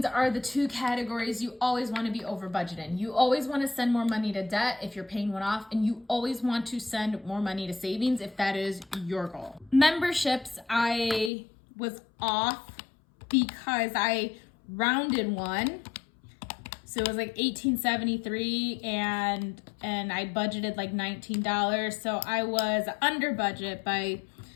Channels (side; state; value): right; drops out; at 11.3 s